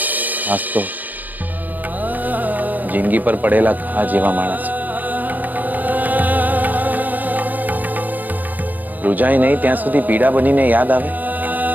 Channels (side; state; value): left; late; 0.083 ms